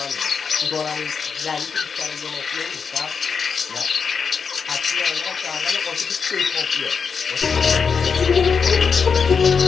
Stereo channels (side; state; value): right; quieter; 5.8 dB